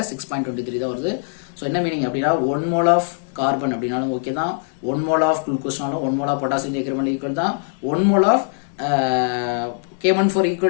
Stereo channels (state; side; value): silent; right; digital silence